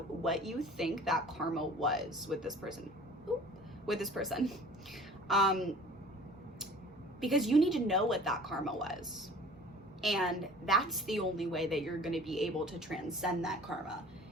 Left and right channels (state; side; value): normal; both; correlation 0.46